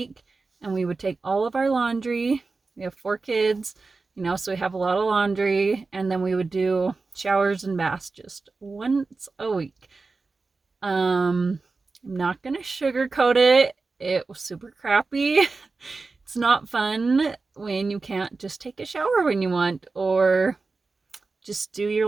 and we would take all of our laundry. We have 4 kids, you know, so we have a lot of laundry, and then we would do showers and baths just once a week. I'm not gonna sugarcoat it. It was super crappy. It's not fun when you can't just take a shower when you want, or just do your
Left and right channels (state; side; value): quieter; left; 4.0 dB